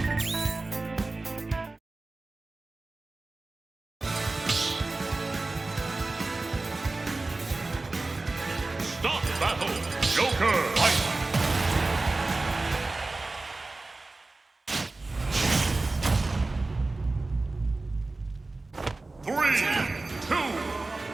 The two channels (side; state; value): left; quieter; 3.3 dB